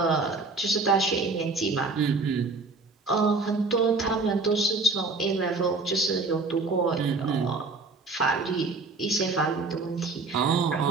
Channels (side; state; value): left; quieter; 3.8 dB